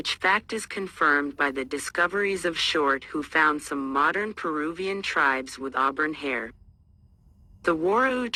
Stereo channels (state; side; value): identical; both; correlation 1.00